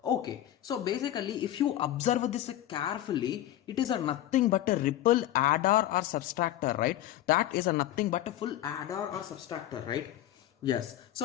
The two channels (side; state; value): right; quieter; 13.1 dB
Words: Okay, so basically if you observe this carefully, it is a nothing but a ripple adder or subtractor, right? That is a nothing but a full adder or subtractor, right? Yes,